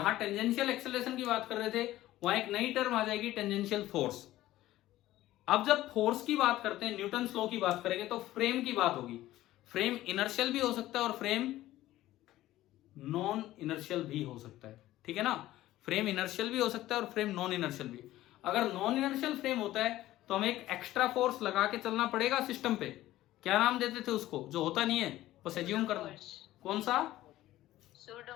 टेंजेंशियल एक्सेलरेशन की बात कर रहे थे, वहां एक नई टर्म आ जाएगी टेंजेंशियल फोर्स। अब जब फोर्स की बात करते हैं, न्यूटन लॉ की बात करेंगे, तो फ्रेम की बात होगी। फ्रेम इनर्शियल भी हो सकता है और फ्रेम नॉन इनर्शियल भी हो सकता है, ठीक है ना। फ्रेम इनर्शियल भी हो सकता है और फ्रेम नॉन इनर्शियल भी। अगर नॉन इनर्शियल फ्रेम होता है तो हमें एक एक्स्ट्रा फोर्स लगा के चलना पड़ेगा सिस्टम पे। क्या नाम देते थे उसको, जो होता नहीं है, बस एज्यूम करना है। कौन सा?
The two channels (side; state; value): right; quieter; 15.2 dB